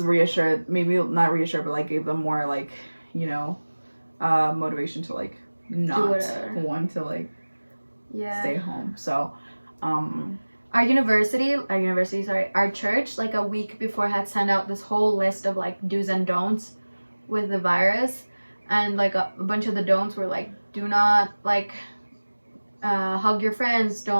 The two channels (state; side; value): inverted; both; correlation -1.00